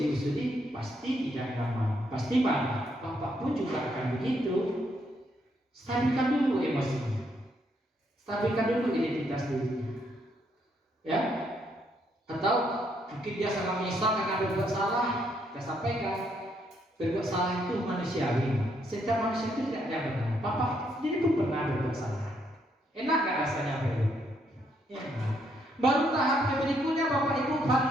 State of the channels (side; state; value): both; normal; correlation 0.74